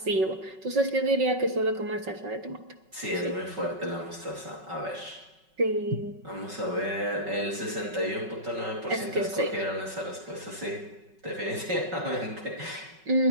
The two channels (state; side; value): late; left; 5.3 ms